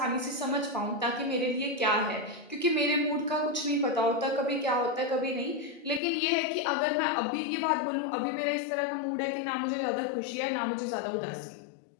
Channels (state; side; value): drops out; right; at 6.0 s